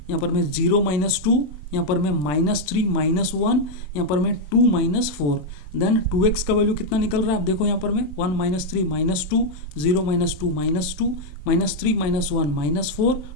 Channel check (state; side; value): late; right; 27 ms